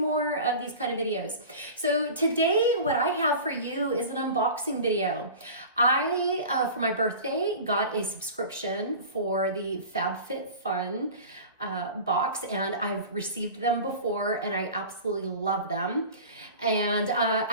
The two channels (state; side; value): inverted; both; correlation -0.36